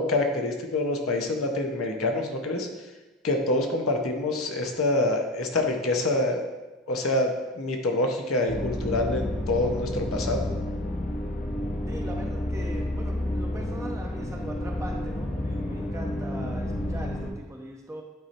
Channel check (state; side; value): normal; both; correlation 0.31